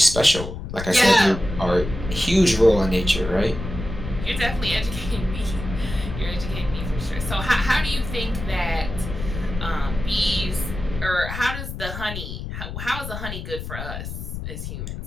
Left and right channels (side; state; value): left; noise; rumble, 7 dB below the sound